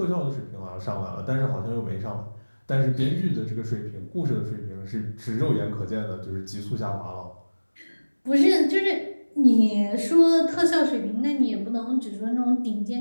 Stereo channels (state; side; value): inverted; both; correlation -1.00